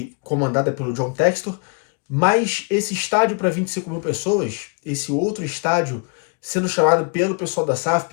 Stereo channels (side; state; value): right; quieter; 34.9 dB